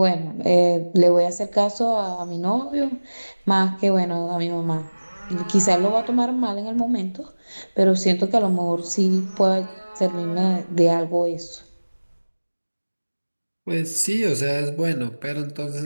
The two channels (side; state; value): both; inverted; correlation -1.00